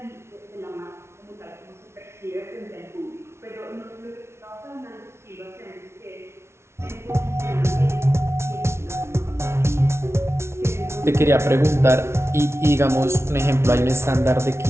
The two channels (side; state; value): left; late; 0.13 ms